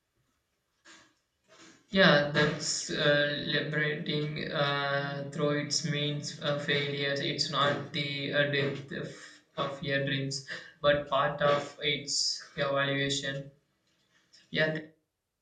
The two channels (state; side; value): identical; both; correlation 1.00